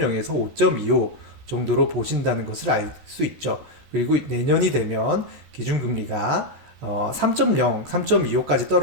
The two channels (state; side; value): late; left; 13 ms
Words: 5.25 정도로 보신다는 것을 알 수 있죠. 그리고 내년이 되면 기준금리가 3.0, 3.25까지